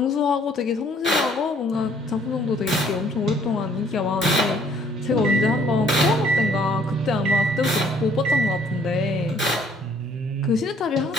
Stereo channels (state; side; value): normal; both; correlation 0.61